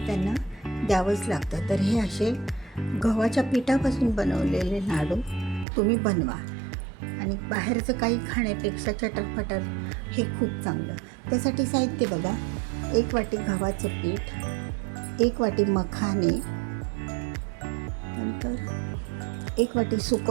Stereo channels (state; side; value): drops out; left; at 5.7 s